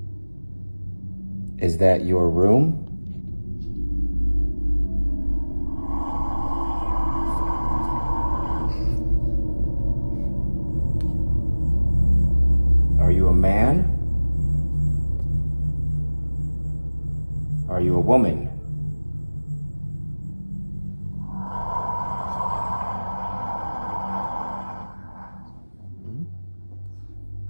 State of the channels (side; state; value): both; inverted; correlation -1.00